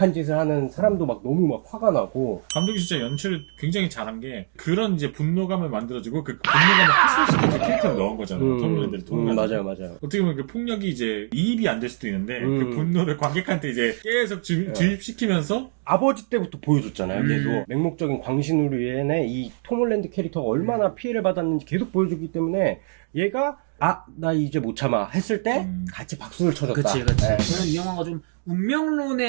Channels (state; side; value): silent; left; 62 dB below the other